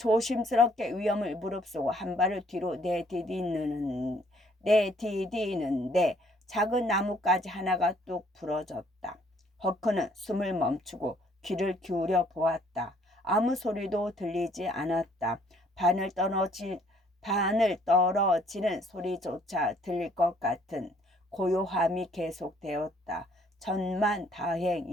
위험을 무릅쓰고 한 발을 뒤로 내디디는데 작은 나뭇가지 하나가 뚝 부러졌다. 허크는 숨을 멈추고 귀를 기울여 보았다. 아무 소리도 들리지 않았다. 바늘 떨어지는 소리조차 들릴 것 같은 고요함이 계속되었다.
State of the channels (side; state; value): both; normal; correlation 0.63